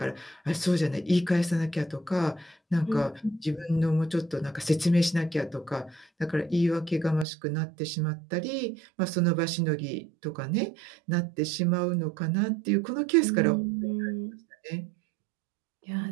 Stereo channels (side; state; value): left; drops out; at 7.2 s